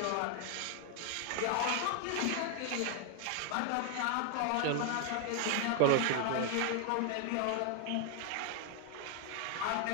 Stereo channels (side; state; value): both; different; correlation 0.00